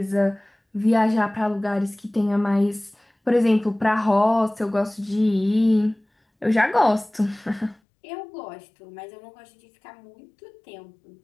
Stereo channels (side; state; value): right; drops out; at 7.8 s